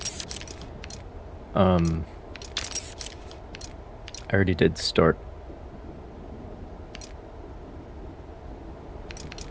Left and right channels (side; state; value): both; identical; correlation 1.00